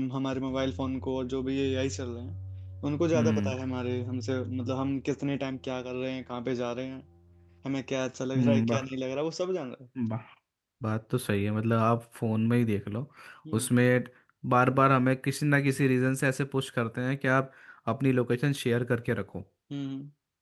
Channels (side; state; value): both; identical; correlation 1.00